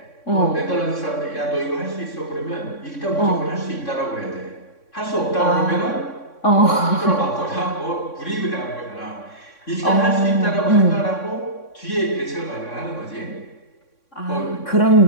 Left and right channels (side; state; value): right; late; 3.6 ms